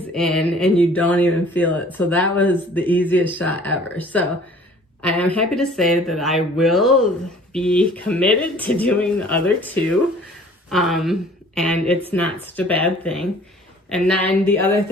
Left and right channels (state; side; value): normal; both; correlation 0.51